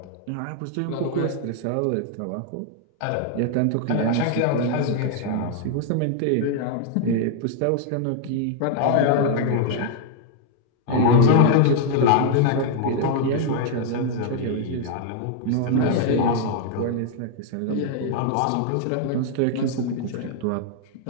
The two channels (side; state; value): both; different; correlation 0.00